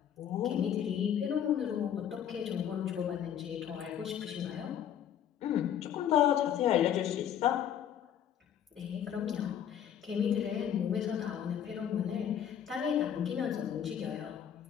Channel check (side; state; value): right; quieter; 9.5 dB